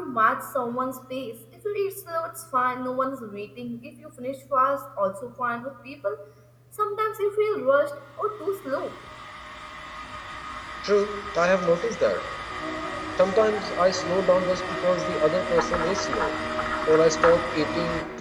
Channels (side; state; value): both; identical; correlation 1.00